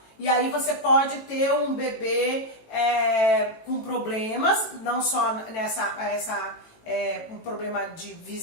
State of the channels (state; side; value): late; right; 18 ms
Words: E aí você pode ter um bebê com problemas, não só um problema de